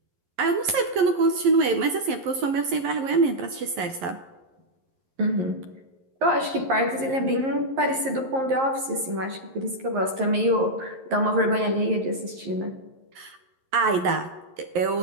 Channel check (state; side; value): late; left; 11 ms